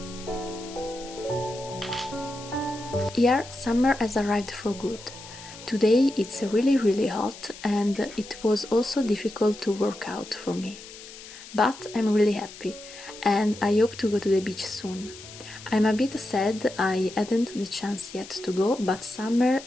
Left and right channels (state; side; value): noise; left; hiss, 16 dB below the sound